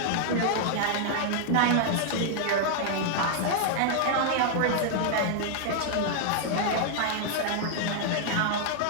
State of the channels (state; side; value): different; both; correlation -0.01